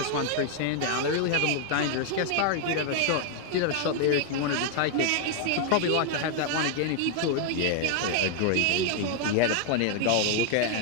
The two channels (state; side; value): different; both; correlation 0.00